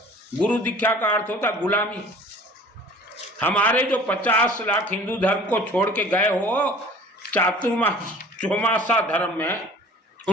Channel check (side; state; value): both; normal; correlation 0.46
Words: गुरु दीक्षा का अर्थ होता गुलामी। हमारे जो 50 लाख हिंदू धर्म को छोड़ के गए हो चातुर्मास चौमासा धर्म में,